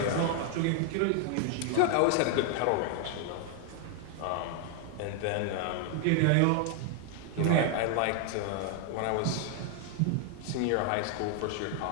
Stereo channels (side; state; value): both; different; correlation 0.00